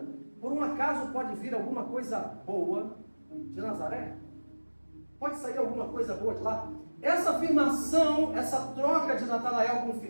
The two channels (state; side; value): inverted; both; correlation -1.00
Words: por um acaso pode vir alguma coisa boa de Nazaré? Pode sair alguma coisa boa de lá? Essa afirmação, essa troca de Natanael com